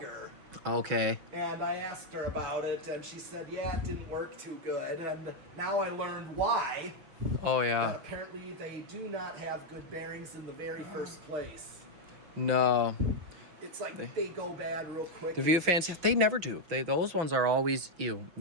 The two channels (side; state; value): left; late; 5.8 ms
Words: Okay. And I asked her about it, and she said, yeah, it didn't work too good. And now I learned why. Oh That yeah. apparently they do not have good bearings in the very first place. No. It's like they go bad real quick. The view fans, they never do. Those ones are always